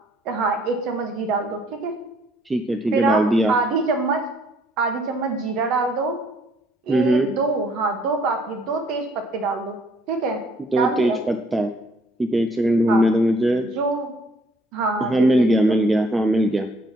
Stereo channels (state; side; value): normal; both; correlation 0.64